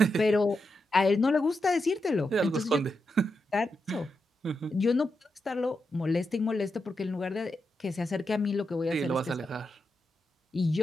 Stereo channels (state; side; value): normal; both; correlation 0.86